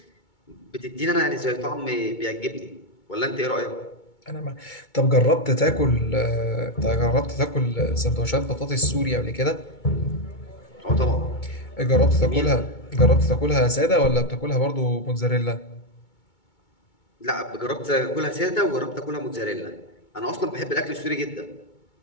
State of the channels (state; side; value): late; right; 2.2 ms